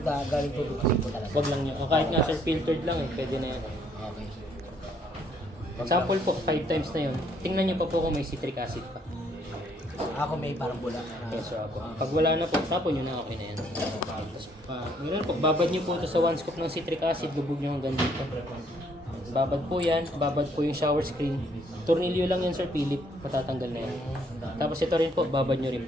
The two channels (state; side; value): normal; both; correlation 0.67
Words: galing tubig gripo talaga. Huwag lang niya. O kahit nga sir, filtered lang eh, pwede na yan. Okay. Sample po, 5 times na yun. Tingnan niyo pa po kung may citric acid pa. Ako may parang bula. Yes, so po. Pag wala na po, tapon nyo na, okay na yan. Tapos, ganun po, babad nyo po ito sa 1 scoop ng citric acid, lubog nyo hanggang dito. Babad po yan, babad po yung shower screen. Tornilyo lang yan, Sir Philip, matatanggal na yan. Tapos ito rin po, babad nyo rin